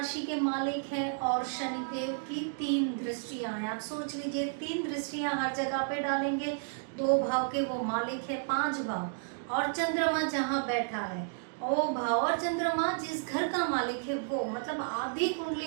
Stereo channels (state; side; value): silent; left; digital silence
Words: के मालिक हैं और शनिदेव की 3 दृष्टियां हैं। आप सोच लीजिए, 3 दृष्टियां हर जगह पे डालेंगे। 2 भाव के वो मालिक है, 5 भाव, और चंद्रमा जहाँ बैठा है वो भाव, और चंद्रमा जिस घर का मालिक है वो, मतलब आधी